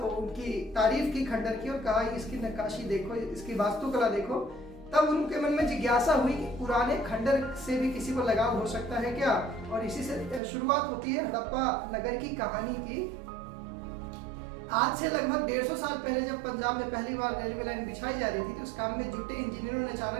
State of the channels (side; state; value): left; drops out; at 10.4 s